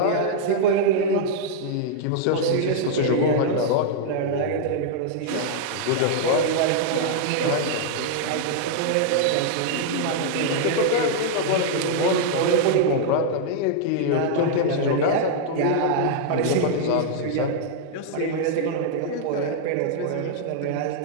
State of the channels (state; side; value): different; both; correlation -0.01